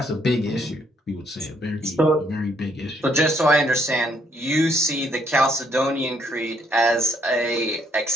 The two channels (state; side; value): normal; both; correlation 0.69